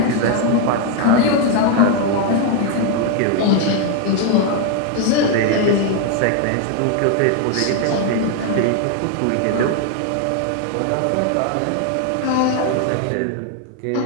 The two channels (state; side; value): different; both; correlation 0.01